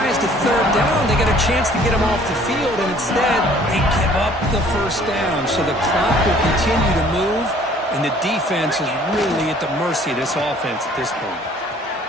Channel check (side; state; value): both; normal; correlation 0.55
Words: to third down. They get a chance to get them off the field, and instead they give up the first down. So the clock will continue to move, and the defense is really at the mercy of this offense at this point.